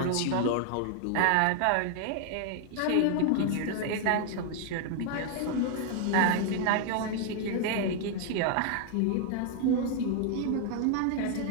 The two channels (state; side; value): different; both; correlation 0.00